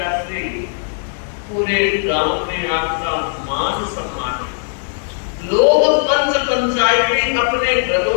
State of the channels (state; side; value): silent; right; digital silence